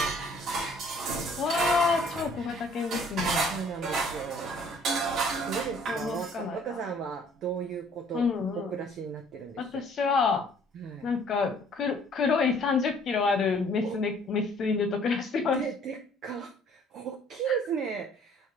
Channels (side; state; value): both; normal; correlation 0.57